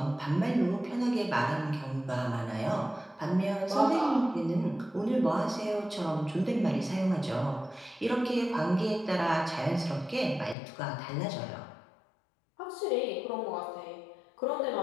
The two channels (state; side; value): drops out; right; at 10.6 s